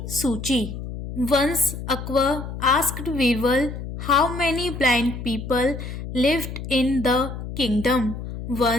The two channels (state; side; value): noise; left; hum, 8 dB below the sound